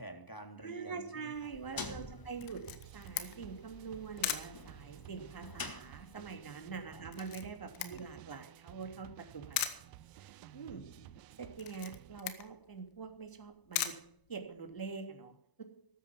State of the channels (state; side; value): late; right; 1.0 ms